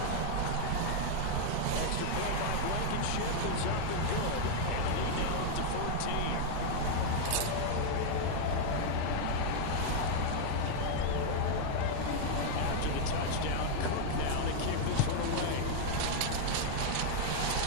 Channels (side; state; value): both; different; correlation 0.00